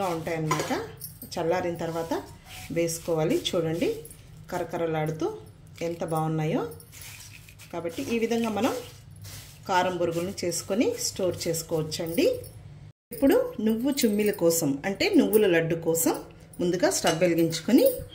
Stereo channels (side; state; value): both; identical; correlation 1.00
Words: ఉంటాయన్నమాట. చల్లారిన తర్వాత వేసుకోవాలి. చూడండి కరకరలాడుతూ ఎంత బాగున్నాయో. కాబట్టి ఈ విధంగా మనం కారం బొరుగులను చేసుకొని స్టోర్ చేసుకోవచ్చండి. ఇప్పుడు నువ్వు చుమ్మిల కోసం అంటే నువ్వుల లడ్డు కోసం ముందుగా స్టవ్ వెలిగించుకొని